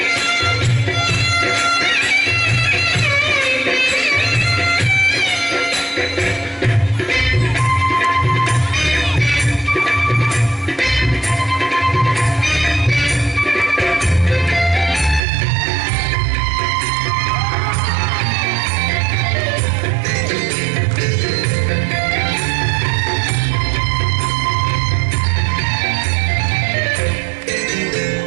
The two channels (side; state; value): left; drops out; at 15.2 s